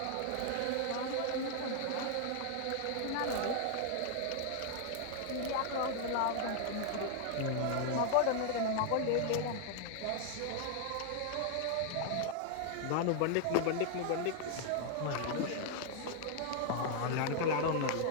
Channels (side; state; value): both; different; correlation 0.00